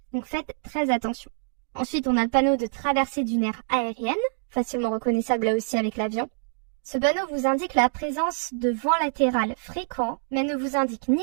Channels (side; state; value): left; silent; 61 dB below the other